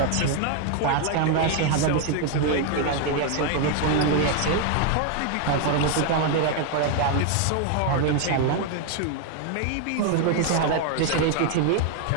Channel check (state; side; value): different; both; correlation 0.01